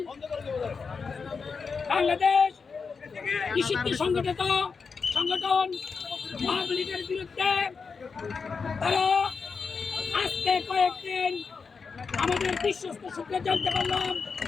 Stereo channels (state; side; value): quieter; right; 5.2 dB